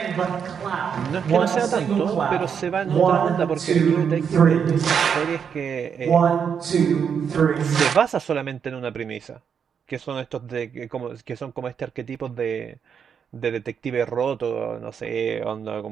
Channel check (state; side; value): quieter; left; 7.2 dB